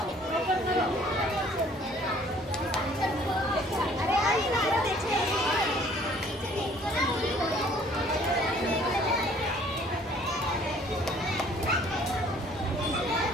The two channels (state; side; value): normal; both; correlation 0.57